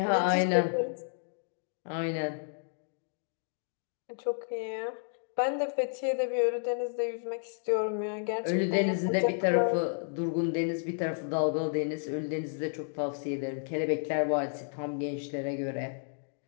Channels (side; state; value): right; silent; digital silence